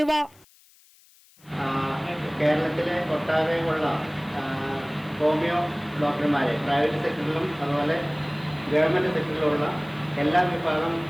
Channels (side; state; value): left; noise; hiss, 28 dB below the sound